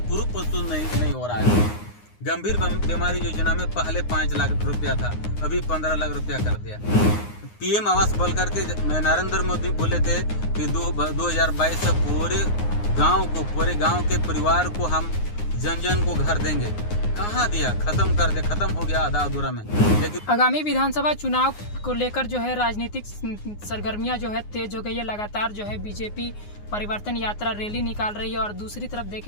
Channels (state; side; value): late; right; 9.6 ms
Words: प्रूफ प्रस्तुत नहीं हो रहा है। गंभीर बीमारी योजना में पहले 5 लाख रुपया था, अभी 15 लाख रुपया कर दिया। पीएम आवास बोल करके नरेंद्र मोदी बोले थे कि 2022 से पूरे गांव के परिवार को हम जन को घर देंगे। कहाँ दिया? खत्म कर दे, खत्म हो गया आधा अधूरा में। लेकिन आगामी विधानसभा चुनाव को लेकर जो है राजनीतिक सरगर्मियां जो है तेज हो गई है। लगातार जो है बीजेपी परिवर्तन यात्रा रैली निकाल रही है, और दूसरी तरफ